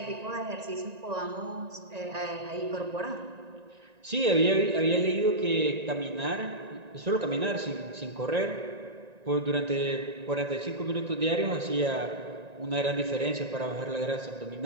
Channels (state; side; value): late; left; 1.9 ms